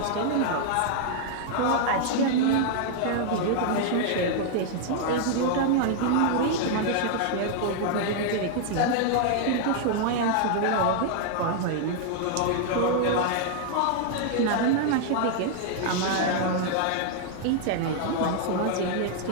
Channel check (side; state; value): both; different; correlation 0.00